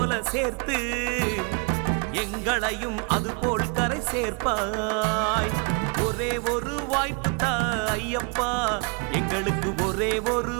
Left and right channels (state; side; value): quieter; left; 34.4 dB